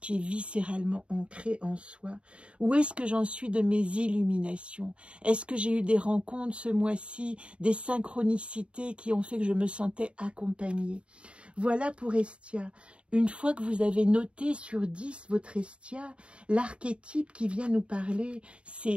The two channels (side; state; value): left; late; 0.057 ms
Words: est viscéralement ancré en soi. Où est-ce que j'en suis de mes illuminations? Est-ce que j'ai eu des rencontres ce mois-ci, des synchronicités qui ont fait que je me sentais accompagnée? Voilà pour Hestia. Une fois que vous avez noté sur 10 votre Hestia, l'archétype qui vient nous parler,